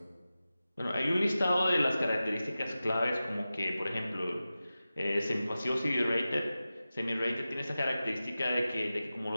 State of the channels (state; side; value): inverted; both; correlation -0.95